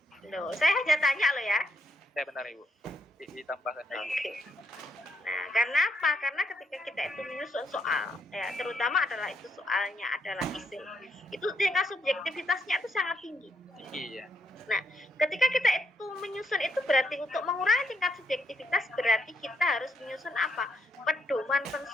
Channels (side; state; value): both; normal; correlation 0.76